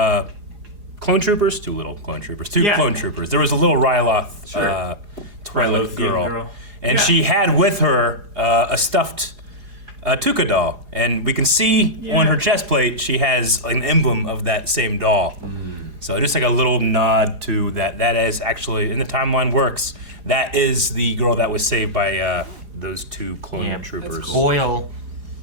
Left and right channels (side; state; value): left; late; 4.8 ms